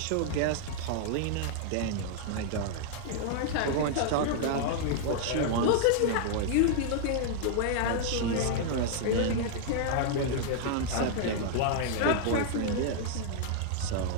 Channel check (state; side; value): different; both; correlation -0.01